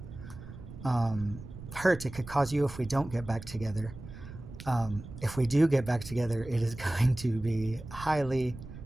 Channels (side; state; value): right; noise; rumble, 14 dB below the sound